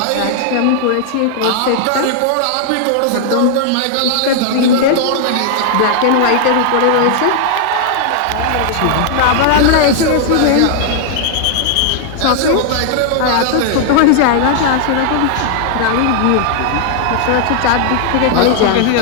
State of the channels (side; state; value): both; different; correlation 0.00